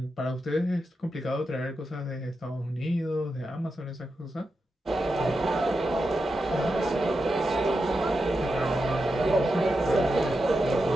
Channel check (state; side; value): normal; both; correlation 0.88